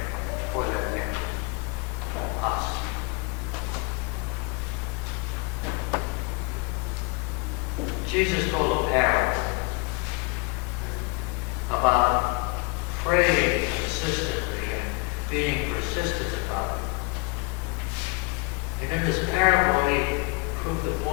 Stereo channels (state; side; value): quieter; right; 28.8 dB